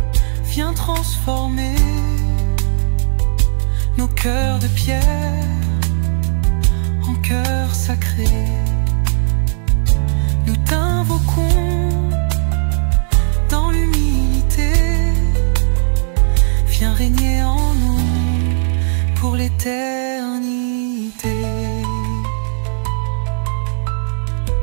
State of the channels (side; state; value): left; silent; 67 dB below the other